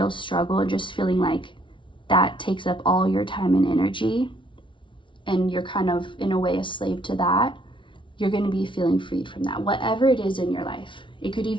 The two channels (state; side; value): late; right; 0.24 ms